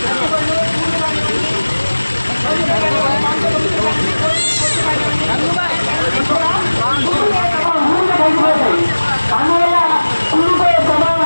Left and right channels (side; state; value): both; inverted; correlation -1.00